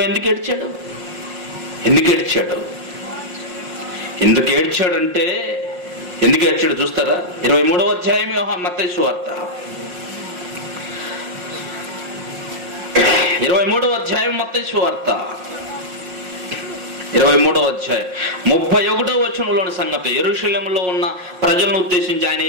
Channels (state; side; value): late; left; 5.6 ms